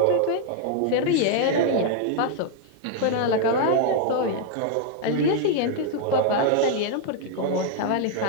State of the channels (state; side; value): different; both; correlation 0.00